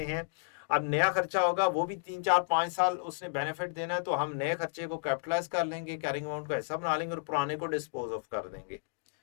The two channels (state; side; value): silent; right; digital silence